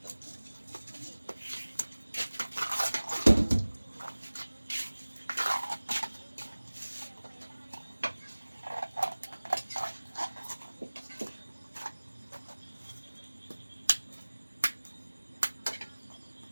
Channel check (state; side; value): inverted; both; correlation -1.00